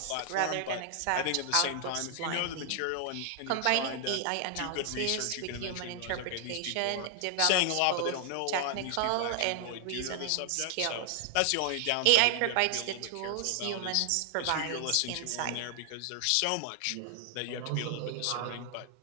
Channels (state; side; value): different; both; correlation 0.00